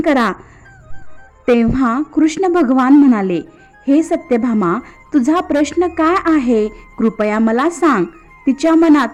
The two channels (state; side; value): identical; both; correlation 1.00